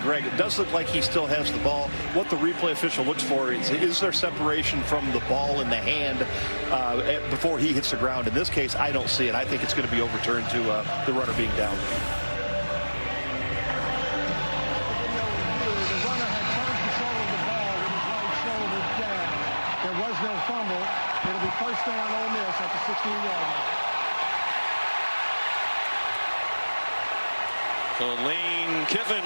Greg. It does look like he still has the ball. What the replay official looks for is there separation from the ball in the hand before he hits the ground. In this case, I don't see it. I think it's going to be overturned to the runner being down. It'll be first down Ole Miss at the 16-yard line. So Lane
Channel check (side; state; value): both; inverted; correlation -1.00